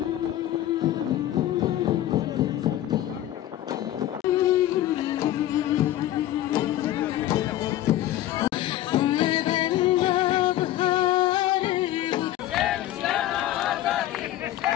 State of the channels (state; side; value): quieter; right; 13.6 dB